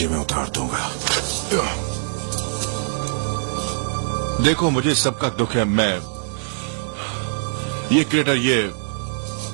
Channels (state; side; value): silent; left; digital silence